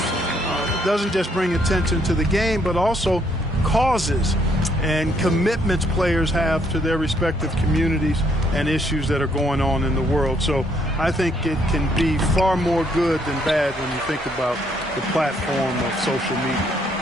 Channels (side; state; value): both; normal; correlation 0.70